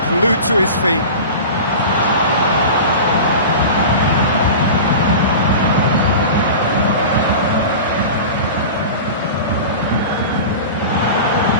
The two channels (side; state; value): both; inverted; correlation -0.32